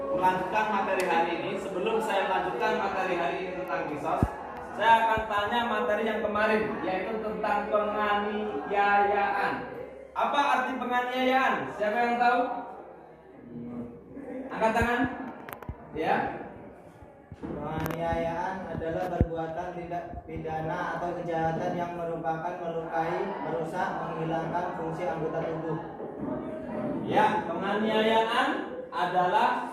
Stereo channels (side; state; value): both; identical; correlation 1.00